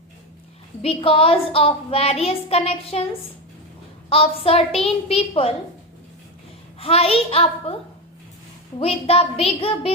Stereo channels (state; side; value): normal; both; correlation 0.16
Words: because of various connections of certain people high up with the big